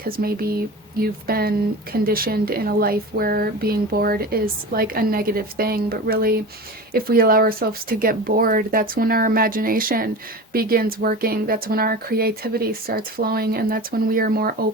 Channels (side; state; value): both; normal; correlation 0.31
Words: maybe you've been conditioned in a life where being bored is like a negative thing. But really, if we allow ourselves to get bored, that's when our imagination begins working, that's when our creativity starts flowing, and that's when we are more